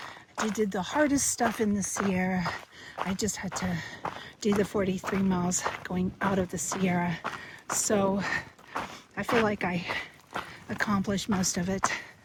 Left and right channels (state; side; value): identical; both; correlation 1.00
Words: I did the hardest stuff in the Sierra. I just had to do the 43 miles going out of the Sierra. So I feel like I accomplished most of it.